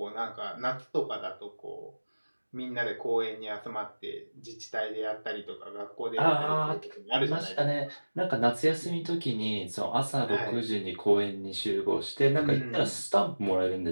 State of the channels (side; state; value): both; inverted; correlation -1.00